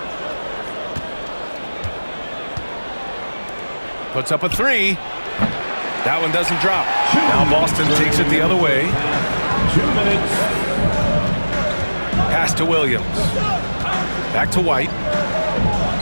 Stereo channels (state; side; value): inverted; both; correlation -1.00